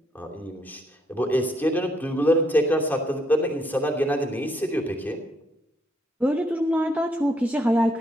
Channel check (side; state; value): both; normal; correlation 0.72